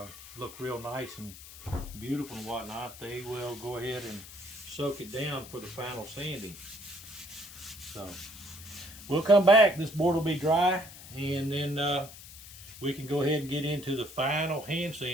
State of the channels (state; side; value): noise; left; hiss, 16 dB below the sound